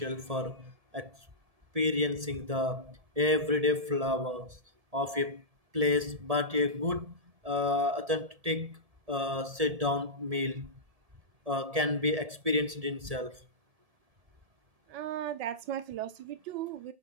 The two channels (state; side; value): late; left; 1.7 ms